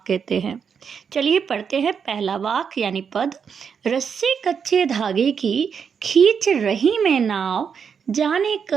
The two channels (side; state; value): left; quieter; 6.8 dB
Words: कहते हैं। चलिए पढ़ते हैं पहला वाक यानी पद। रस्से कच्चे धागे की खींच रही मैं नाव, जाने